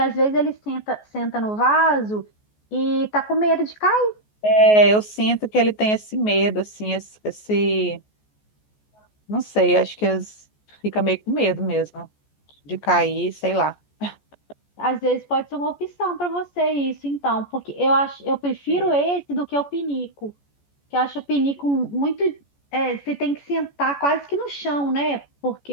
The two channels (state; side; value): late; right; 14 ms